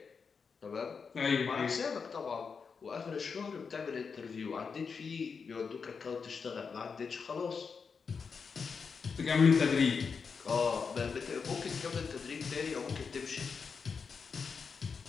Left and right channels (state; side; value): quieter; right; 5.6 dB